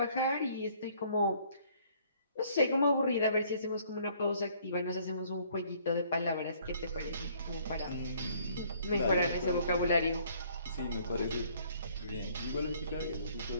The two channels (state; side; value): inverted; both; correlation -0.61